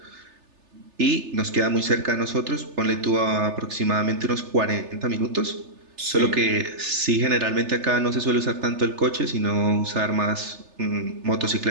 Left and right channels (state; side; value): late; left; 3.3 ms